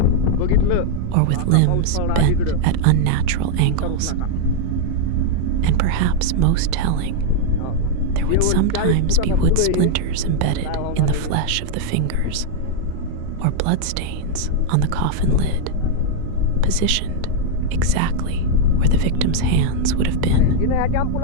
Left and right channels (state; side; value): different; both; correlation -0.01